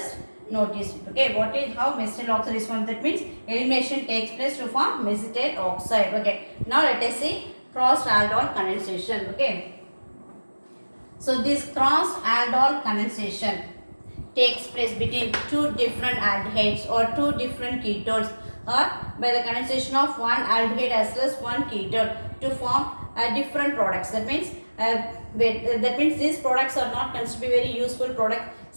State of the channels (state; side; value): inverted; both; correlation -1.00